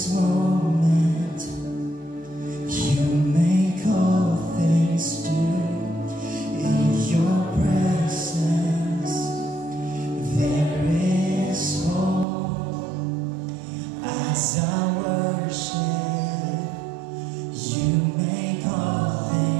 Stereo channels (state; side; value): drops out; left; at 12.2 s